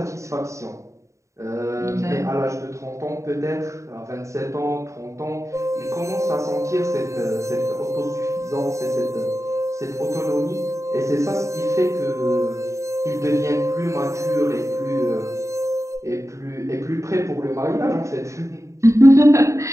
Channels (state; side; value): late; left; 0.15 ms